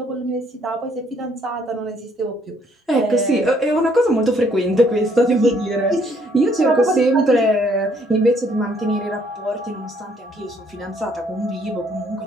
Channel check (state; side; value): normal; both; correlation 0.66